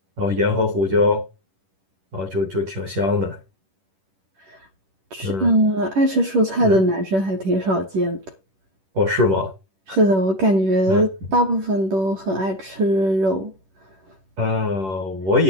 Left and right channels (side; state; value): left; late; 10 ms